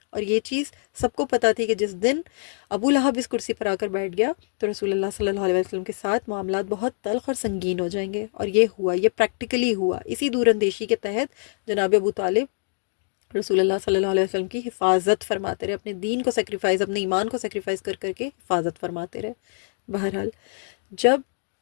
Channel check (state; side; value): silent; right; 62 dB below the other